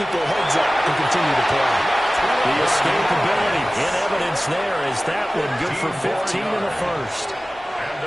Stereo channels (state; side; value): normal; both; correlation 0.97